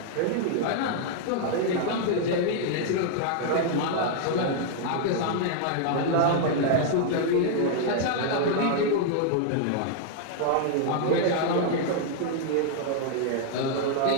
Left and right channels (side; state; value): both; different; correlation 0.00